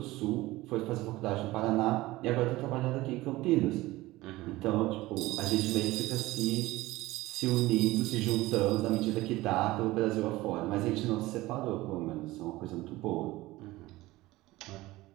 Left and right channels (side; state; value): left; quieter; 18.7 dB